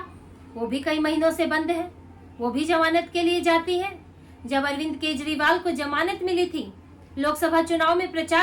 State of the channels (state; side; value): identical; both; correlation 1.00